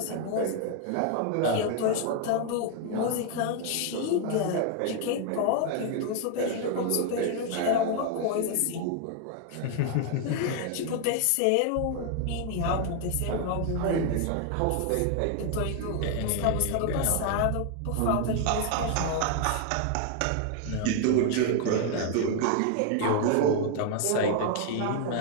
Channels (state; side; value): different; both; correlation 0.00